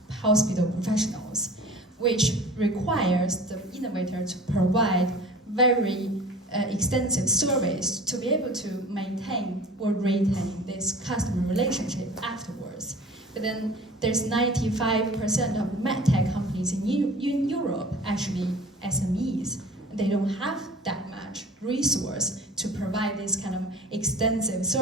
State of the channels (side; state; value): both; normal; correlation 0.42